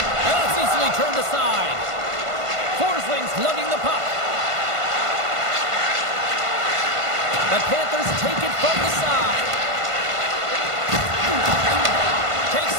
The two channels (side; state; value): left; late; 1.5 ms